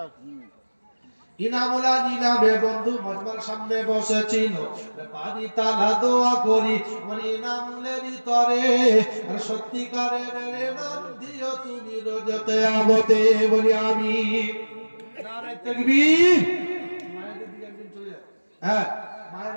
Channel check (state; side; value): inverted; both; correlation -1.00